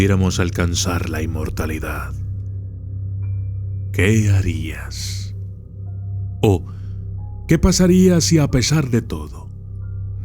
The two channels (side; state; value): both; identical; correlation 1.00